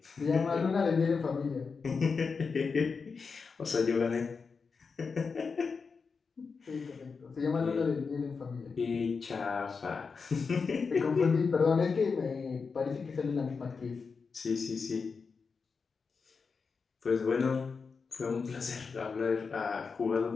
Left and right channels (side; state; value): right; quieter; 5.1 dB